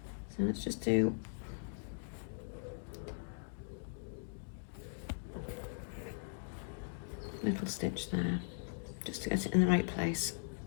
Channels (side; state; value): right; silent; digital silence